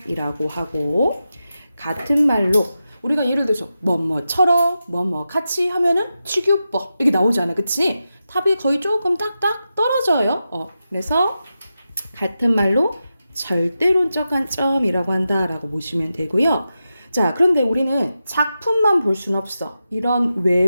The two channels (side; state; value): both; inverted; correlation -0.90